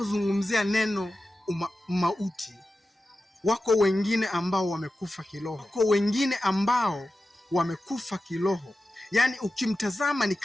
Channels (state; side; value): normal; both; correlation 0.93